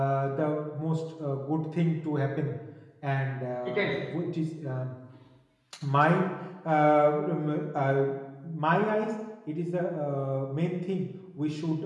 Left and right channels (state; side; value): identical; both; correlation 1.00